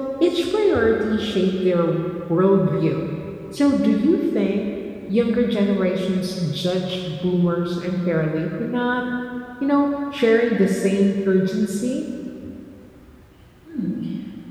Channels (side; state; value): both; identical; correlation 1.00